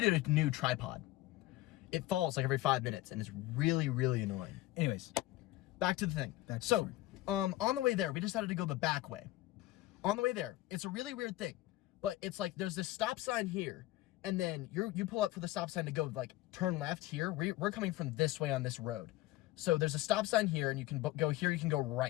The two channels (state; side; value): quieter; right; 17.1 dB